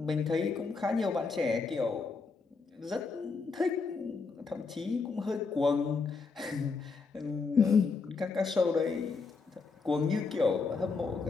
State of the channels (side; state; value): right; quieter; 4.6 dB